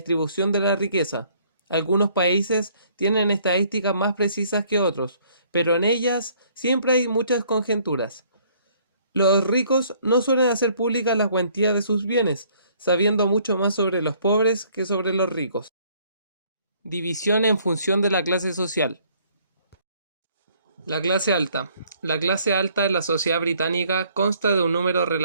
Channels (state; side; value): inverted; both; correlation -0.61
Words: de la riqueza. Algunos países tienen estadísticas más precisas que otros, pero en ellas siempre hay muchas conjeturas. Los ricos no suelen hacer públicas las cuantías de sus bienes, sabiendo mucho más sobre los pobres que sobre los ricos. División en función de la clase social. La clase alta. La clase alta en la sociedad británica consta de un número